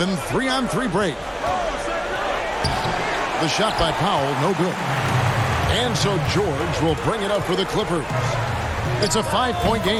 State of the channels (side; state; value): both; identical; correlation 1.00